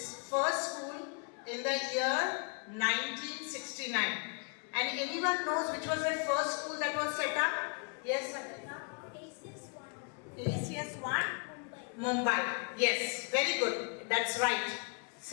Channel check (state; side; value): quieter; right; 38.1 dB